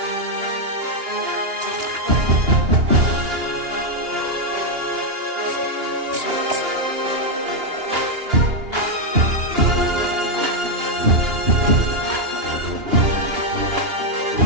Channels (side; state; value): left; late; 2.8 ms